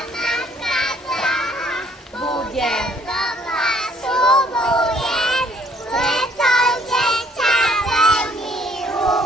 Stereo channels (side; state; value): both; normal; correlation 0.63